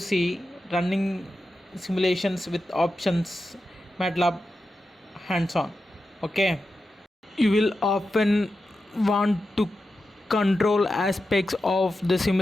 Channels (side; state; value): both; normal; correlation 0.90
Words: running simulations with options MATLAB hands on. Okay, you will often want to control aspects of the